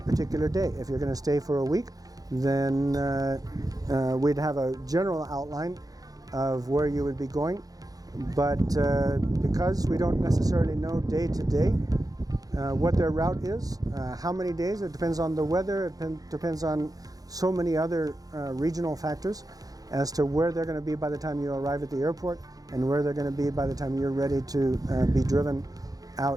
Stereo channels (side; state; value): left; late; 0.18 ms